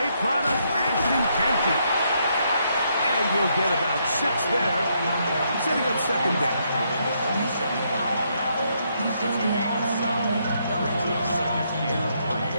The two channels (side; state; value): both; inverted; correlation -0.75